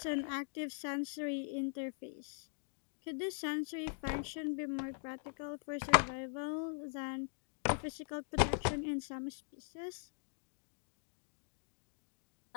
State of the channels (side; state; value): right; silent; digital silence